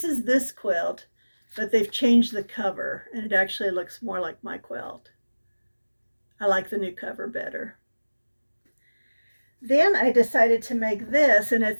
this quilt, but they've changed the cover and it actually looks more like my quilt. I like the new cover better. Then I decided to make this, and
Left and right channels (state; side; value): inverted; both; correlation -1.00